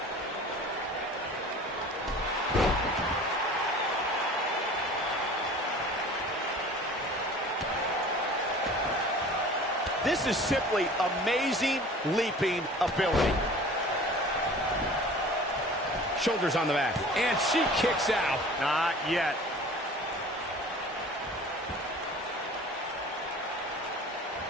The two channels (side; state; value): both; normal; correlation 0.43